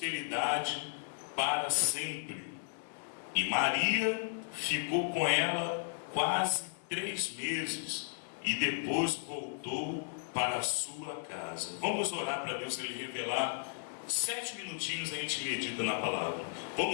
para sempre. E Maria ficou com ela quase 3 meses, e depois voltou para a sua casa. Vamos orar para Deus ele revelar. 7 minutinhos a gente medita na palavra.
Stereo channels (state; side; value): silent; right; digital silence